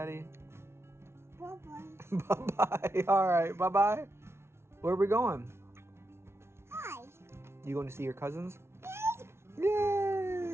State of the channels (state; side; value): late; left; 0.12 ms